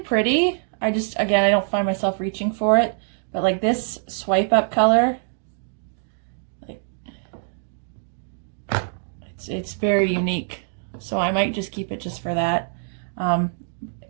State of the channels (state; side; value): silent; left; digital silence